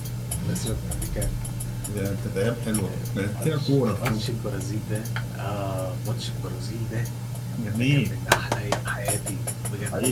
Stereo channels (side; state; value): both; identical; correlation 1.00